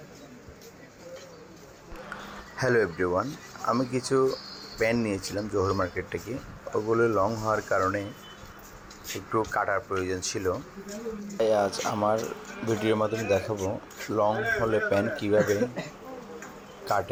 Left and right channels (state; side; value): identical; both; correlation 1.00